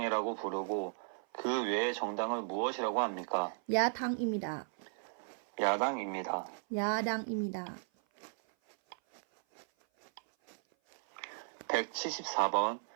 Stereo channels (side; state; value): left; silent; 54 dB below the other